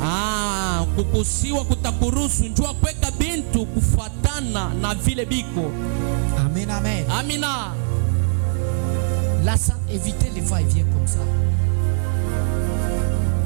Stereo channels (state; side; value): silent; left; digital silence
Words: Amen, amen. Amina. Évitez les va-et-vient comme ça.